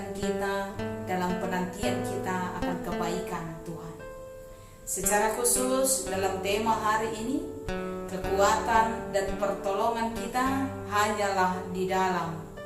kita dalam penantian kita akan kebaikan Tuhan. Secara khusus dalam tema hari ini, kekuatan dan pertolongan kita hanyalah di dalam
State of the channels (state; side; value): identical; both; correlation 1.00